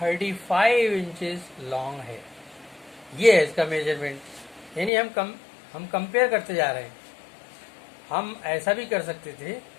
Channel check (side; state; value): right; drops out; at 4.9 s